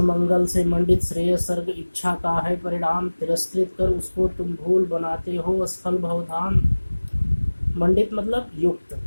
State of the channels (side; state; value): both; inverted; correlation -1.00